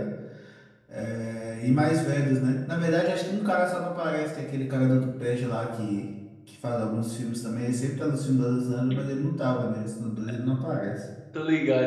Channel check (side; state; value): both; identical; correlation 1.00